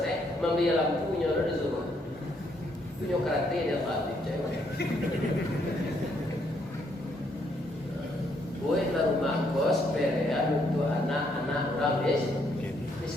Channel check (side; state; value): both; normal; correlation 0.72